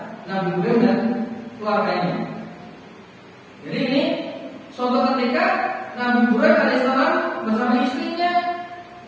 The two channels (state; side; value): identical; both; correlation 1.00